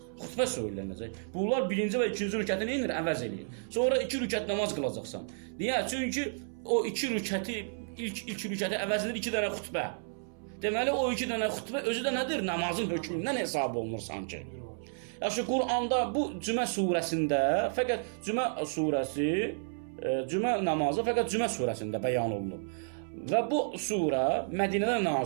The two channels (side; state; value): left; silent; 57 dB below the other